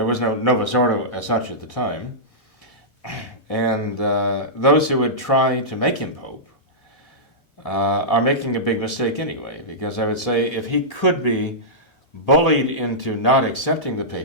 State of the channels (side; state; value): both; normal; correlation -0.14